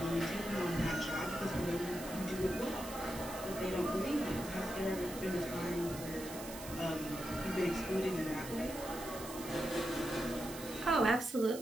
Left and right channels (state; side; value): noise; right; hiss, 12 dB below the sound